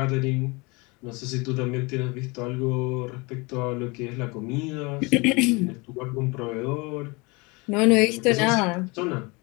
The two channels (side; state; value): right; quieter; 26.9 dB